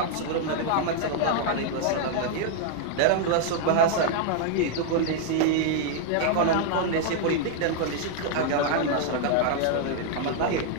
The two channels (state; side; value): different; both; correlation 0.00